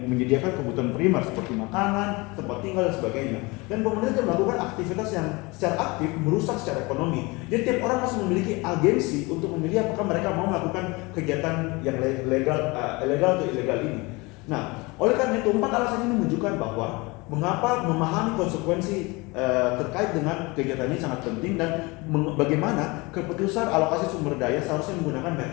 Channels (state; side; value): quieter; right; 25.1 dB